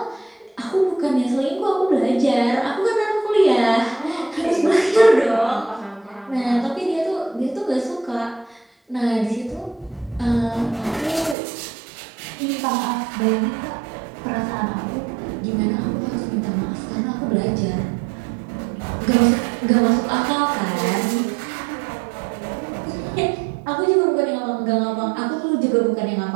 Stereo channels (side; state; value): left; drops out; at 11.4 s